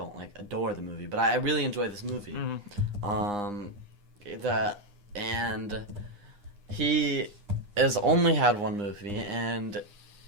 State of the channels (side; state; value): left; late; 9.8 ms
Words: adore the movie, but I really enjoy this movie. And he has only had one movie, and